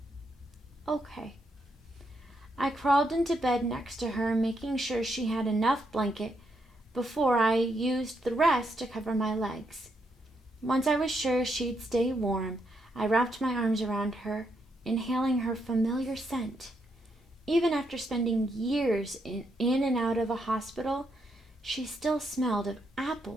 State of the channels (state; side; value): normal; both; correlation 0.78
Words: "Okay." I crawled into bed next to her, making sure she had enough blanket before I used the rest to cover my legs. Once I was sure she'd stay warm, I wrapped my arms around her, inhaling her familiar scent. Even after spending years in and out of a hospital, she still smelled of